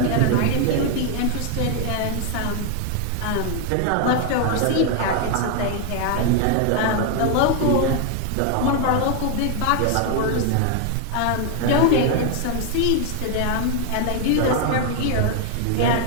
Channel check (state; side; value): different; both; correlation 0.00